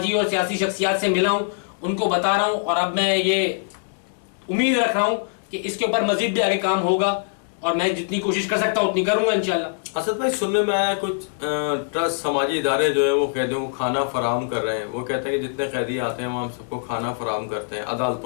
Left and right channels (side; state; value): right; silent; digital silence